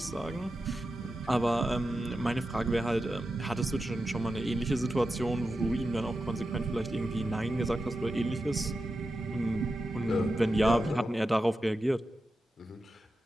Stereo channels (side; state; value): both; normal; correlation 0.91